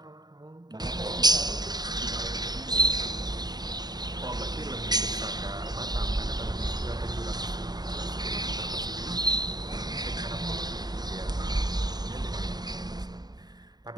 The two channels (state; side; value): late; left; 0.20 ms